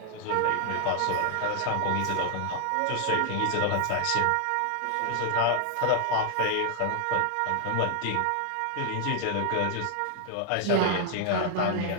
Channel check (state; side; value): different; both; correlation 0.00